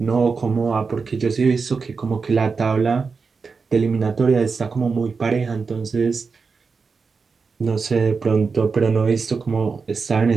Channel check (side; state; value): left; quieter; 4.9 dB